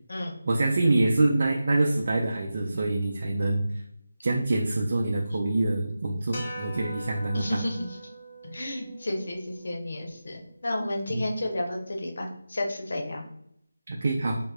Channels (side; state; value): both; inverted; correlation -0.92